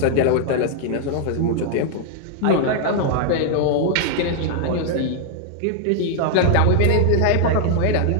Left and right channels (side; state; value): both; different; correlation 0.00